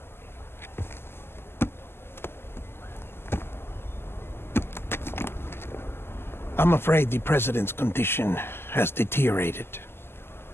I'm afraid the president's condition has deteriorated.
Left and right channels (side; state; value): right; late; 0.12 ms